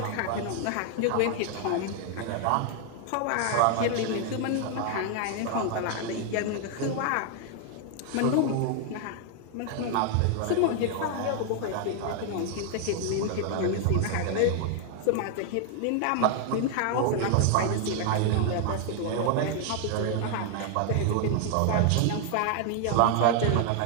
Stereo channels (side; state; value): both; different; correlation 0.00